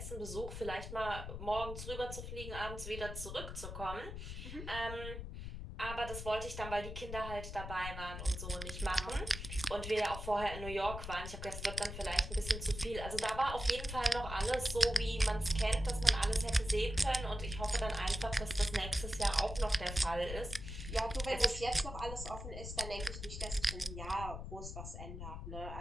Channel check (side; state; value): left; noise; rumble, 8 dB below the sound